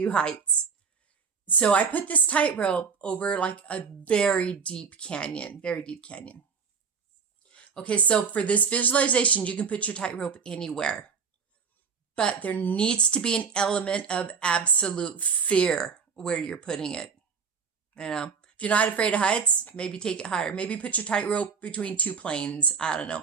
heights. So I put this tightrope over like a very deep canyon. Okay, so for this visualization, you can put your tightrope anywhere. But there needs to be an element of absolute fear where you're putting it. If you're not afraid of heights, maybe take it higher. Maybe put your tightrope between two planes. I don't know.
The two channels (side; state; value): left; quieter; 5.9 dB